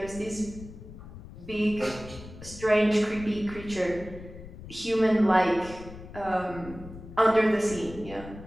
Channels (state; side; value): noise; left; rumble, 15 dB below the sound